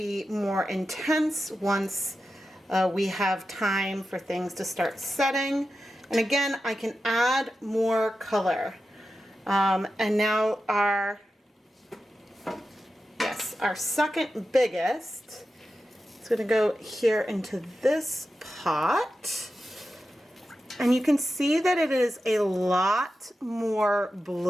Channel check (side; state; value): both; normal; correlation 0.91